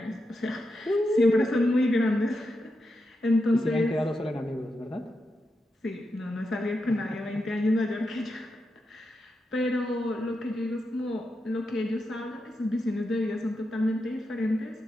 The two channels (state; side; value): normal; both; correlation 0.86